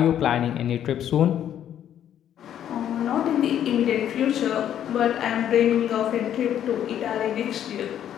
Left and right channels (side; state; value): right; quieter; 10.3 dB